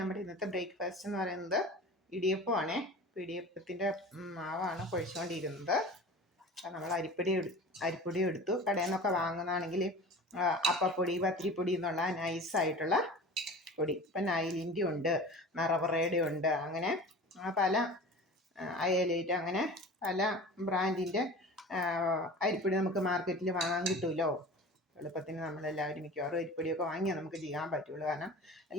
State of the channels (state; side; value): normal; both; correlation 0.38